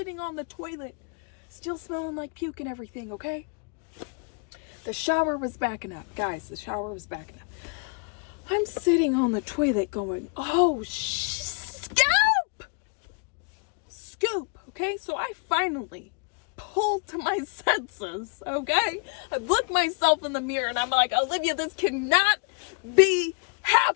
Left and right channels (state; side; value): quieter; right; 34.9 dB